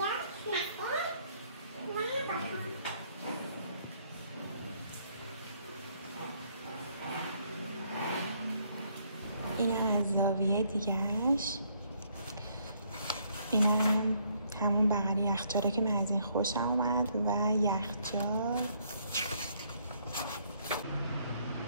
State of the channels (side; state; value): both; inverted; correlation -0.69